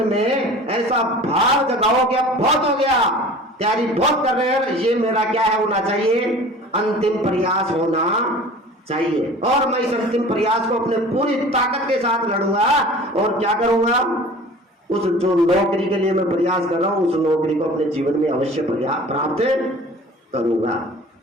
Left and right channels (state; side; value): normal; both; correlation 0.43